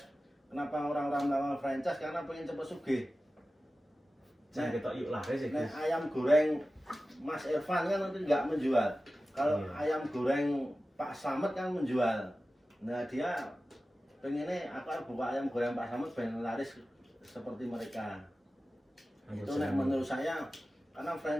Kenapa orang-orang melakukan franchise? Karena pengen cepet sugih. Jangan kita yuk laris ya, Nek Gus. ayam goreng Mas Irfan kan nanti nggak menjual. Kalau Iya. ayam goreng Pak Slamet kan menjual. Nah dia pengennya aku buka ayam goreng Pak Slamet pengen laris seperti mereka. Itu nek menurut saya karena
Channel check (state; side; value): normal; both; correlation 0.95